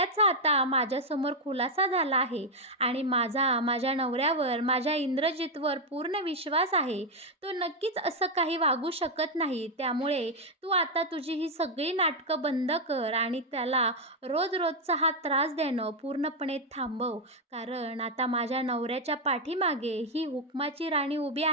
आता माझ्यासमोर खुलासा झाला आहे आणि माझ्या नवऱ्यावर, माझ्या इंद्रजितवर पूर्ण विश्वास आहे. तो नक्कीच असं काही वागू शकत नाही. त्यामुळे तू आता तुझी ही सगळी नाटकं बंद कर आणि त्याला रोजचा हा त्रास देणं पूर्णपणे थांबव. कारण आता माझ्या नवऱ्याच्या पाठीमागे ही हुकमाची राणी उभी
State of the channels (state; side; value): normal; both; correlation 0.02